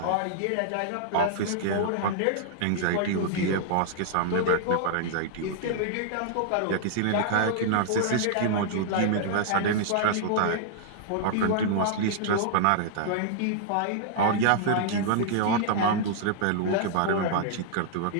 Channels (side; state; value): both; different; correlation -0.01